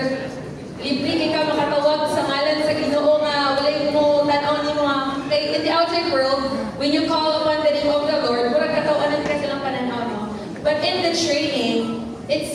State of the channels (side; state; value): both; identical; correlation 1.00